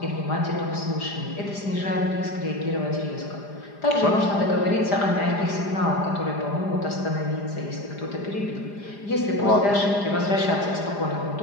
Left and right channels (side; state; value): right; late; 4.9 ms